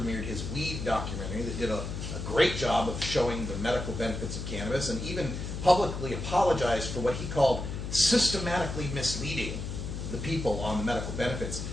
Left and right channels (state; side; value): noise; left; hum, 5 dB below the sound